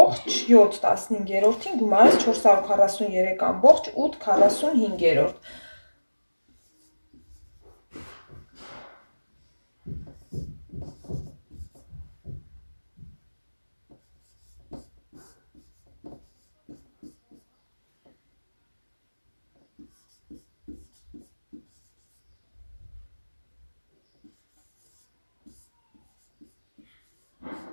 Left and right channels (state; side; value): inverted; both; correlation -1.00